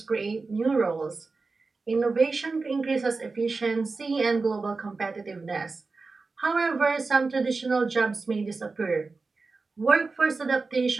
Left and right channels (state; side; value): quieter; left; 4.0 dB